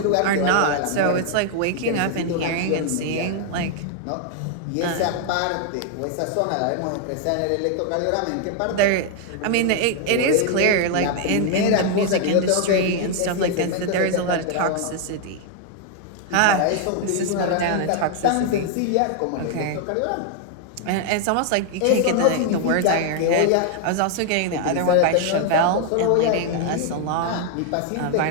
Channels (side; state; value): both; different; correlation 0.00